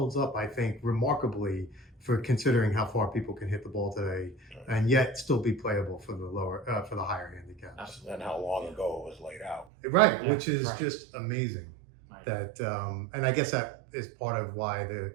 up, I think, remarkably for considering how far people can hit the ball today, and yet still be playable for the higher handicaps. Absolutely. And how long ago it was laid out. Right, Yeah, which is right. just amazing. Right. That and I guess that is part of why the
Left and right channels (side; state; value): left; drops out; at 9.7 s